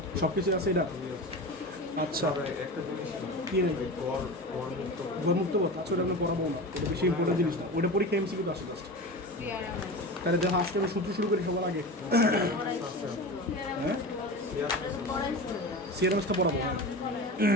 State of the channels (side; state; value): both; normal; correlation 0.29